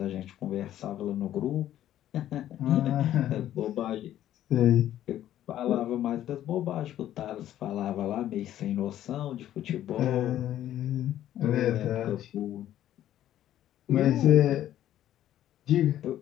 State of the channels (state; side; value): quieter; right; 12.2 dB